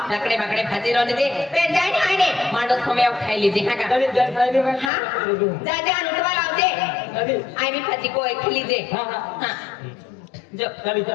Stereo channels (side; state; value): right; drops out; at 4.9 s